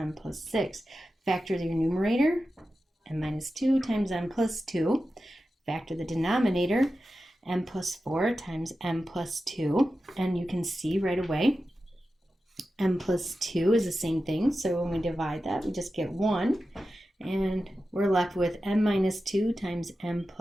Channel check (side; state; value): both; normal; correlation 0.92